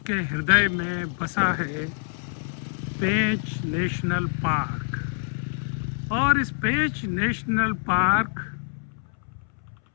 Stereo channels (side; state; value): right; silent; 61 dB below the other